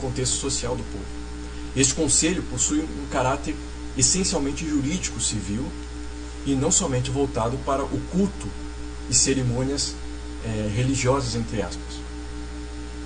social do povo. Este conselho possui um caráter essencialmente jurídico civil, e não somente voltado para o culto e cerimônias religiosas, entre aspas.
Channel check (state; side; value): identical; both; correlation 1.00